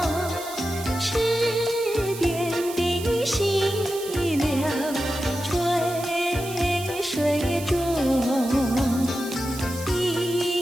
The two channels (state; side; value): noise; right; hiss, 12 dB below the sound